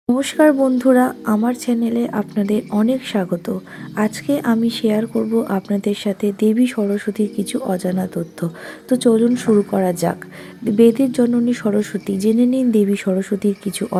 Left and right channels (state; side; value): identical; both; correlation 1.00